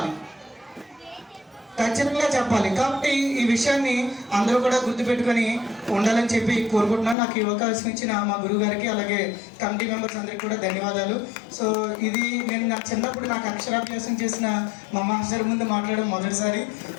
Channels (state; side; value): drops out; right; at 7.2 s